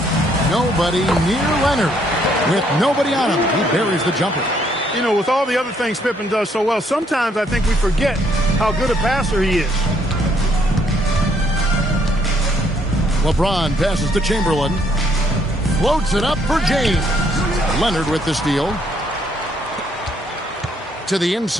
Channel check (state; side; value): normal; both; correlation 0.69